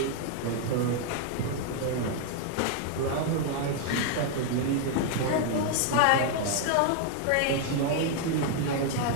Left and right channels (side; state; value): both; different; correlation 0.00